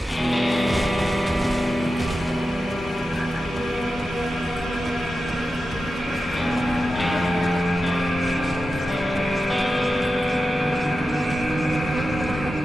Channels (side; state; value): both; normal; correlation 0.92